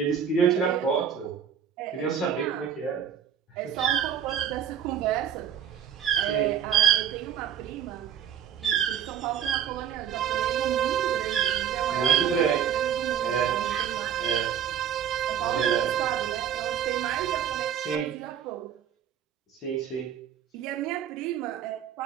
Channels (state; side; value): quieter; left; 8.7 dB